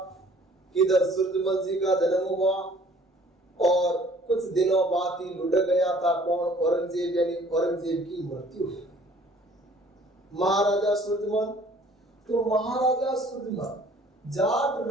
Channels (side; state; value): both; normal; correlation 0.55